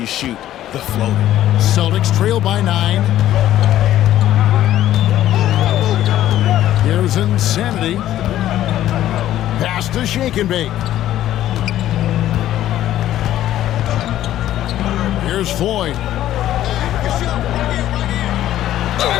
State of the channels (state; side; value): quieter; right; 12.9 dB